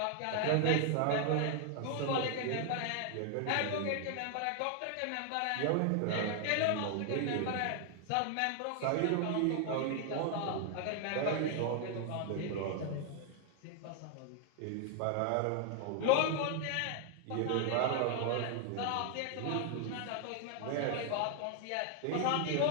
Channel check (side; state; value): both; different; correlation 0.00